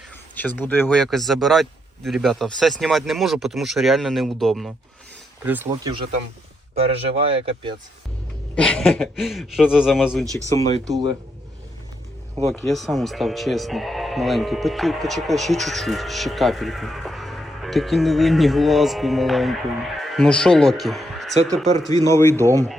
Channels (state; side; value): normal; both; correlation 0.79